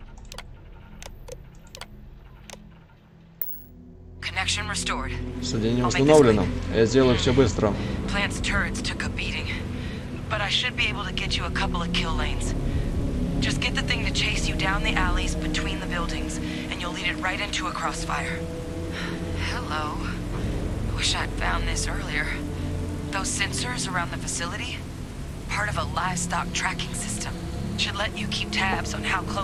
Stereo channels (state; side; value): identical; both; correlation 1.00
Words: Соединение установлено. Я сделаю все быстро. Plant's turrets took a beating, but I should be able to get you a couple of kill lanes. Just get the thing to chase you down the alleys between the buildings, and you'll lead it right into a crossfire. Hello. Wish I'd found this earlier. Those sensors around the facility? Part of a livestock tracking system. Should let you keep tabs on how